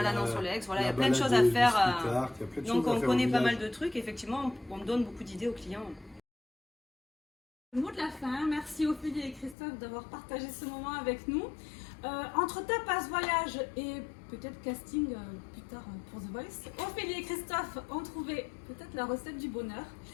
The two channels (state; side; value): drops out; right; at 9.6 s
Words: sur l'Aix, voilà, il y a plein de choses à faire. Donc on connaît pas mal de trucs, effectivement, on donne beaucoup d'idées aux clients. Le mot de la fin, merci Ophélie et Christophe d'avoir partagé ce moment avec nous. Entre tapas, voyage et peut-être casting plus tard pour The Voice, Ophélie et Christophe ont trouvé peut-être la recette du bonheur.